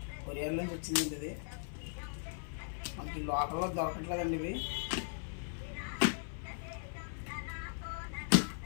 కొరియర్ నుంచి వచ్చిందండి ఇది. మనకి లోకల్లో దొరకట్లేదండి ఇవి.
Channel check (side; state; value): right; silent; 52 dB below the other